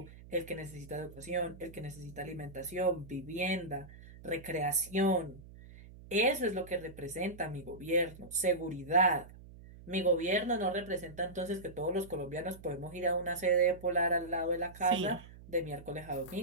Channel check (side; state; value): right; noise; hum, 18 dB below the sound